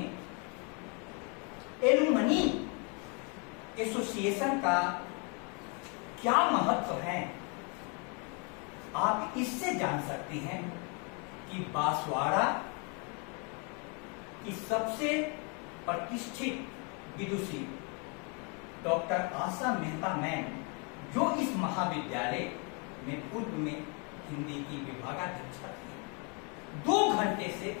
एलुमनी एसोसिएशन का क्या महत्व है, आप इससे जान सकते हैं कि बांसवाड़ा की सबसे प्रतिष्ठित विदुषी डॉक्टर आशा मेहता मैम, जो इस महाविद्यालय में पूर्व में हिंदी की विभागाध्यक्षा थी, 2 घंटे से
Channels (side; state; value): right; quieter; 34.8 dB